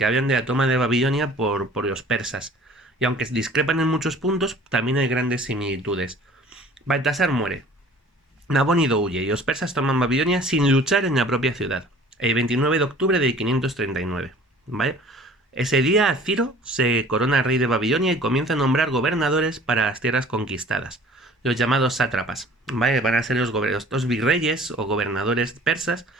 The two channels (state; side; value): normal; both; correlation 0.49